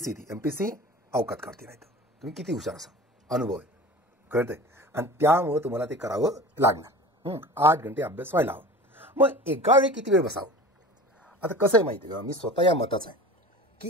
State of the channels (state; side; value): normal; both; correlation 0.36